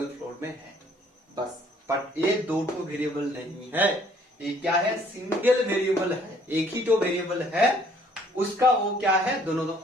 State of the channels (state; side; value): normal; both; correlation 0.61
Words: फ्लोर में है बस। बट ये दो ठो वेरिएबल नहीं है, ये क्या है, सिंगल वेरिएबल है, एक ही तो वेरिएबल है, उसका वो क्या है, दोनों